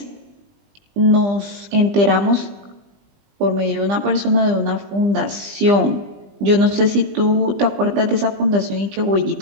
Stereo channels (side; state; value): left; late; 20 ms